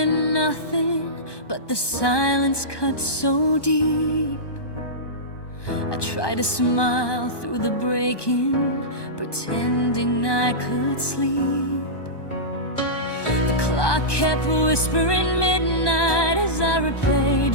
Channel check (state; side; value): late; right; 1.2 ms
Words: nothing, but the silence cut so deep. I tried to smile through the breaking, pretending I could sleep. The clock kept whispering midnight as I replayed